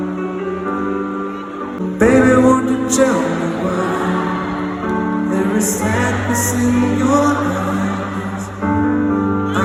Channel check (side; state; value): both; identical; correlation 1.00